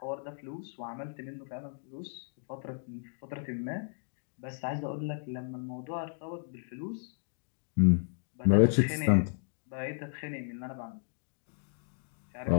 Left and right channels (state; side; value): silent; right; digital silence